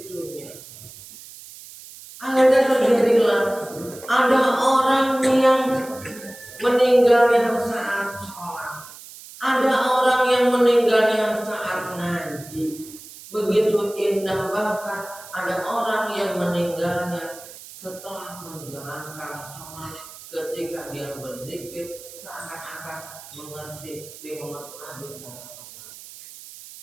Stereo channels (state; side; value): noise; right; hiss, 17 dB below the sound